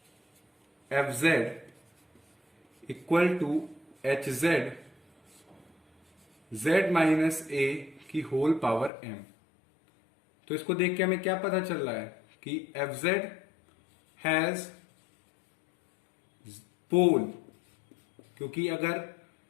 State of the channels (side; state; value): right; drops out; at 8.9 s